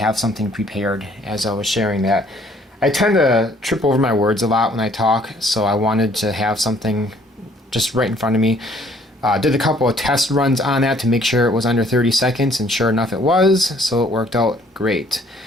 something prepared as I was sharing that. I tend to trip over my words a lot when I talk, so I wanted to have something just right in front of me. Did a couple of test runs on that to make sure it was under 30 seconds, and sure enough it was, so it worked out great.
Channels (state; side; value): normal; both; correlation 0.61